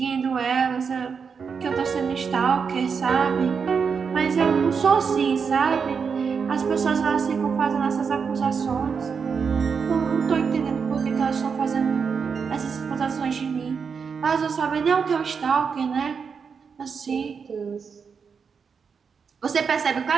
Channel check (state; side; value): quieter; left; 6.0 dB